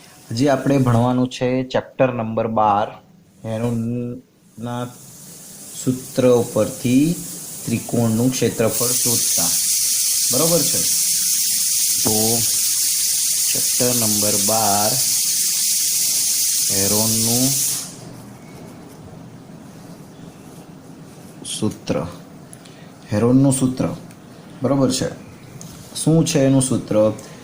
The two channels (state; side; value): identical; both; correlation 1.00